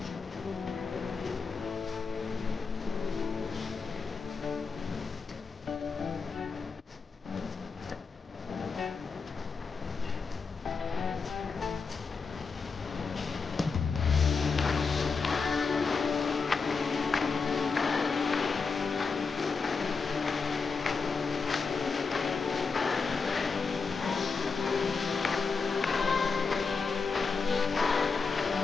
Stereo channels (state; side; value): quieter; right; 4.9 dB